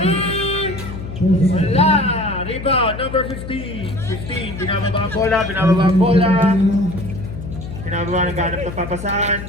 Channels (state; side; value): noise; left; hum, 10 dB below the sound